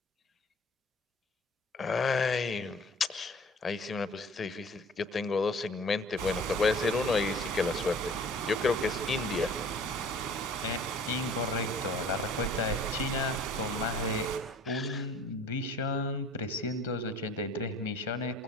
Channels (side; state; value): both; normal; correlation 0.48